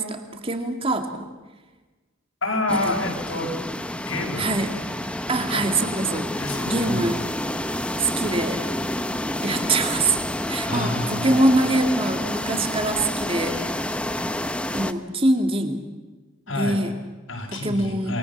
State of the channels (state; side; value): normal; both; correlation 0.54